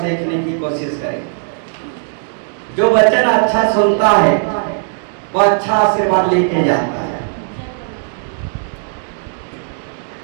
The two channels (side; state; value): left; silent; digital silence